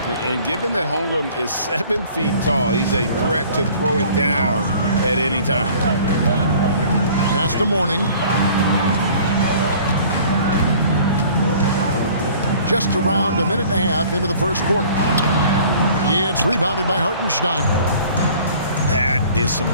And given that Holmgren is 7 feet tall, he's a threat to throw it down at any time. Pass to Mourning. Just around a minute and a half into the first quarter. It's rebounded by Hartenstein. That is some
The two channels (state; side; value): inverted; both; correlation -0.50